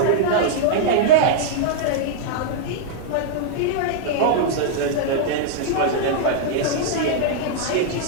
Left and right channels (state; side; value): different; both; correlation -0.02